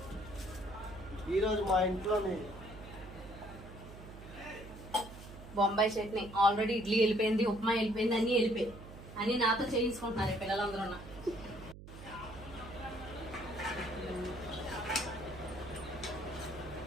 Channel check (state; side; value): noise; right; hum, 15 dB below the sound